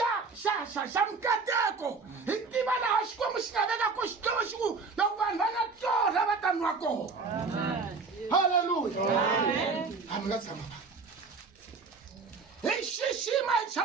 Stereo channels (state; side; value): quieter; left; 4.5 dB